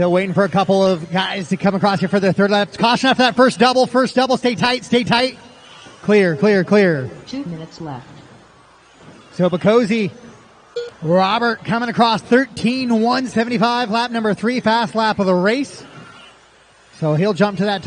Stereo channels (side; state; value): both; identical; correlation 1.00